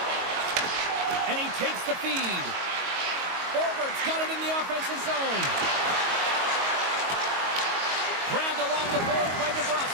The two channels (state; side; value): late; left; 22 ms